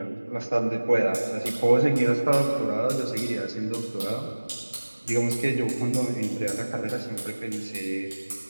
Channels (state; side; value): inverted; both; correlation -1.00